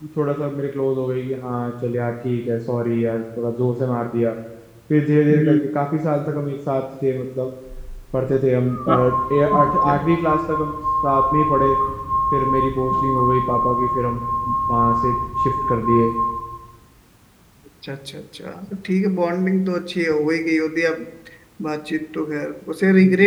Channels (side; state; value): both; identical; correlation 1.00